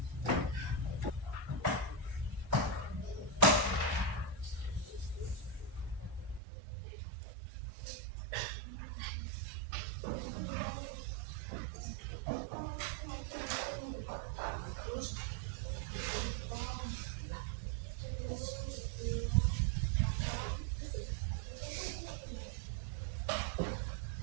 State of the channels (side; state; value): left; drops out; at 6.4 s